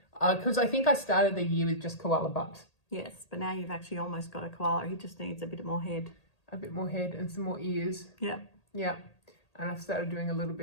Because I think I started the year with just koala butt. Yes, but now you've actually almost got a koala. He just needs a bit more head. A bit more head and some more ears. Yeah. Yeah. And I've started doing a little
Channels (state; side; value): late; right; 1.8 ms